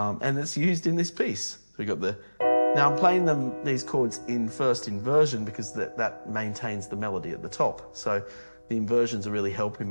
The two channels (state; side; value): inverted; both; correlation -1.00